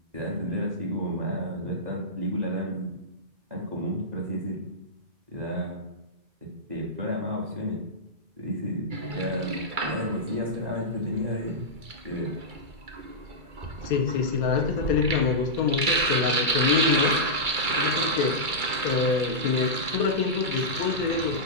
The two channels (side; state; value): left; late; 2.3 ms